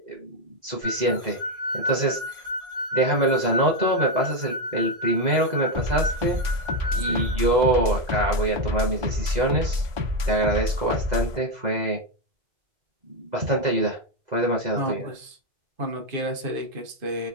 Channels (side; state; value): left; late; 2.0 ms